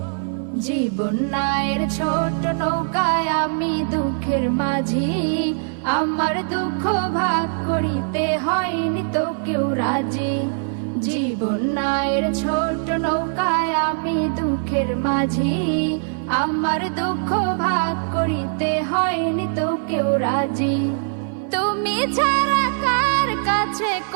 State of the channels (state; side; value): silent; left; 56 dB below the other